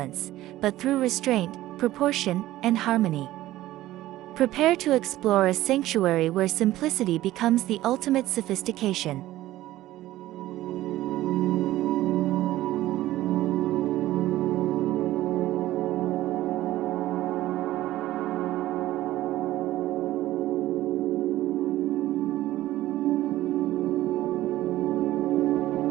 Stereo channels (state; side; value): quieter; left; 15.4 dB